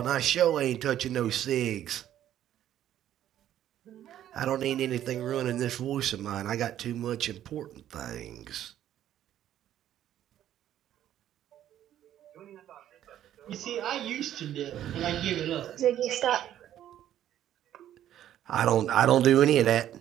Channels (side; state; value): left; quieter; 11.5 dB